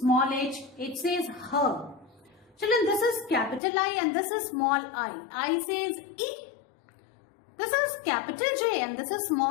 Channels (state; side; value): drops out; right; at 3.6 s